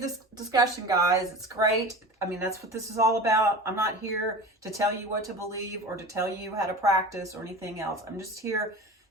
discussion, guys. It's great. That's what this is all about. I'm not here to tell you what to believe or to tell you how to practice or anything else. I'm just here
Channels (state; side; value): normal; both; correlation 0.34